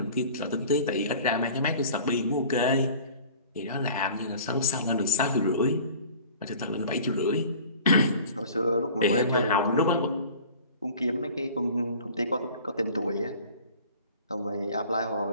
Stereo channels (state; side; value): inverted; both; correlation -0.45